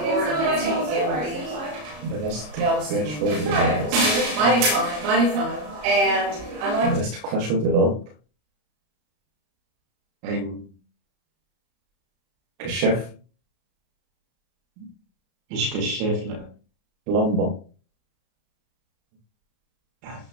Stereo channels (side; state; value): left; late; 33 ms